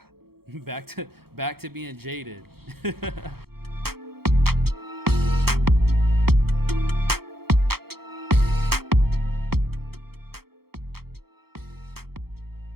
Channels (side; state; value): left; late; 0.95 ms